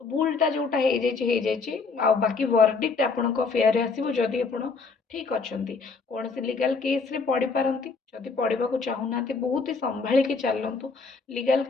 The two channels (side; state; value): right; quieter; 4.5 dB